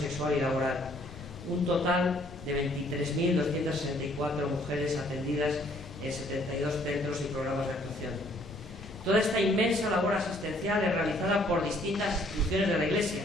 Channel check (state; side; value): noise; left; rumble, 15 dB below the sound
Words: y laboral. Un total de 23.264 mujeres atendidas en 72 centros y programas de actuación. Toda esta inmensa labor asistencial es realizada por distintas instituciones de la Iglesia,